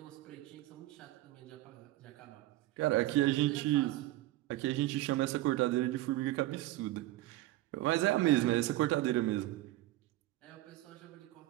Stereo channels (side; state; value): left; quieter; 16.3 dB